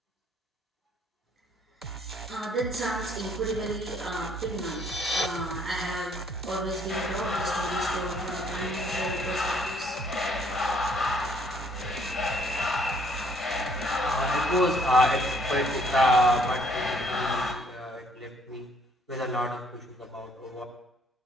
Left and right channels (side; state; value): both; normal; correlation 0.64